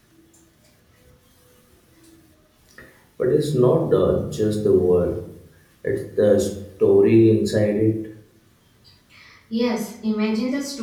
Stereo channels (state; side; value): identical; both; correlation 1.00